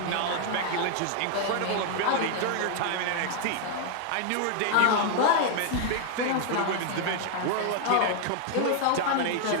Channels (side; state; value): both; different; correlation 0.00